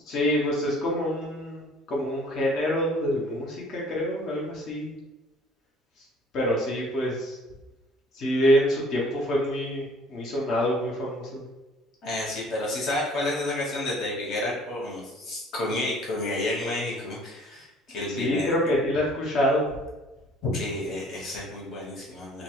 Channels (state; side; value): normal; both; correlation 0.55